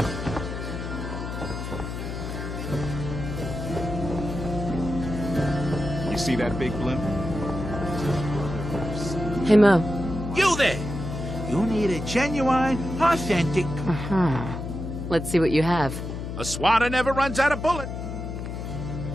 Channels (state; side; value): noise; left; hum, 6 dB below the sound